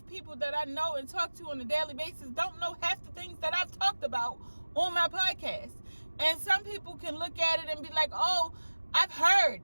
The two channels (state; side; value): inverted; both; correlation -1.00